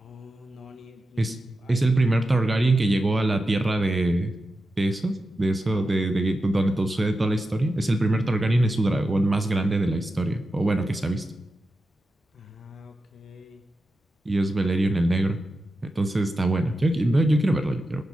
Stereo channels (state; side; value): normal; both; correlation 0.90